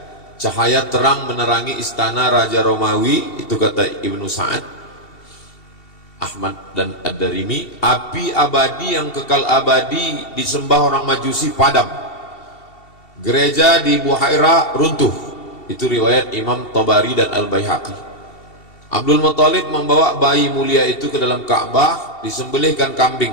Cahaya terang menerangi istana Raja Romawi, itu kata Ibnu Sa'ad, Ahmad dan Ad-Darimi. Api abadi yang kekal abadi disembah orang Majusi padam. Gereja di Buhaira runtuh. Itu riwayat Imam Tabari dan Al-Baihaqi. Abdul Muthalib membawa bayi mulia itu ke dalam Ka'bah, disembelihkan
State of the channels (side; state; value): right; late; 2.7 ms